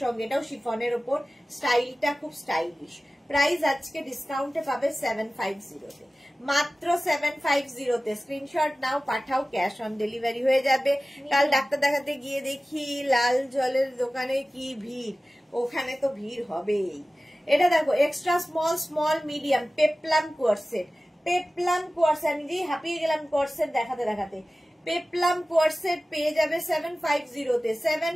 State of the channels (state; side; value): normal; both; correlation 0.96